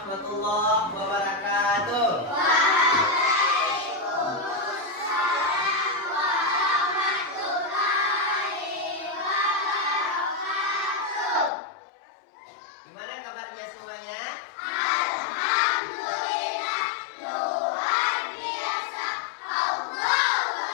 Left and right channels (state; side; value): drops out; right; at 11.5 s